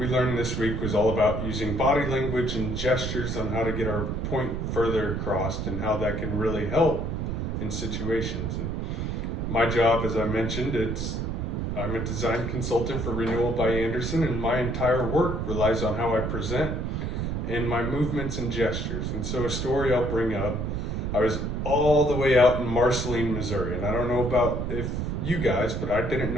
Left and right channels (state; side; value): noise; right; rumble, 2 dB below the sound